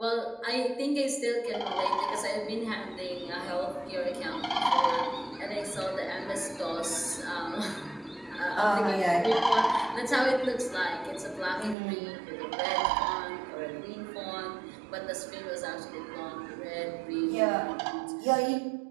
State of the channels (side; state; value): left; drops out; at 11.8 s